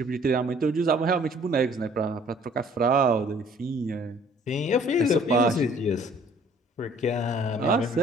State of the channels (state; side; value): normal; both; correlation 0.56